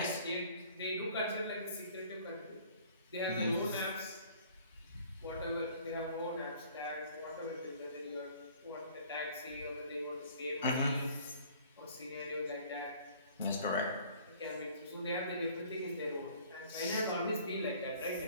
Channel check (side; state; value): both; inverted; correlation -0.53